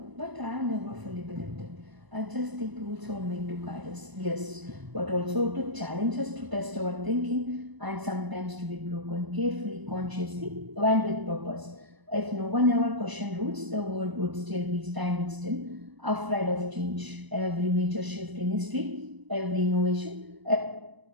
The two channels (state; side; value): late; left; 1.0 ms